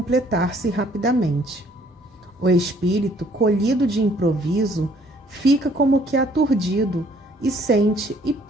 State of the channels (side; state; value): both; normal; correlation 0.61